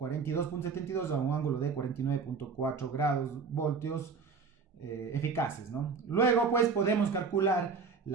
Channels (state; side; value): quieter; left; 5.2 dB